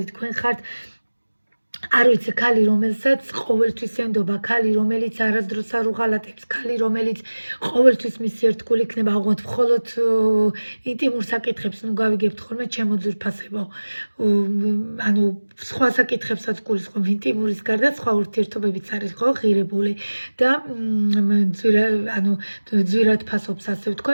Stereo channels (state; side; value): inverted; both; correlation -1.00